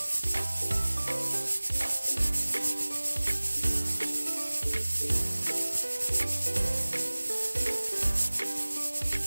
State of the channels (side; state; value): both; inverted; correlation -1.00